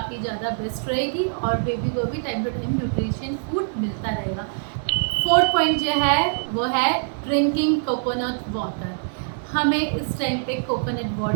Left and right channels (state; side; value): silent; left; digital silence